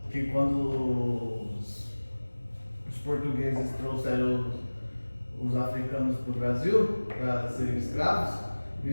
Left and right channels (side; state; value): both; inverted; correlation -1.00